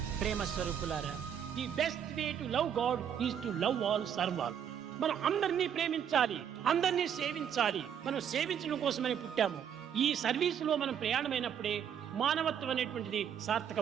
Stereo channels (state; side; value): quieter; left; 8.6 dB